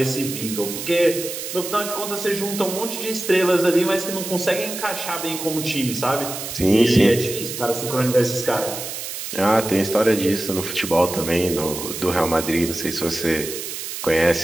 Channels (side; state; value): right; noise; hiss, 7 dB below the sound